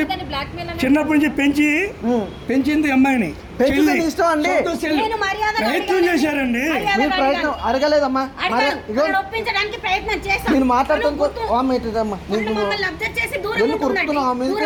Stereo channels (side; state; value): both; identical; correlation 1.00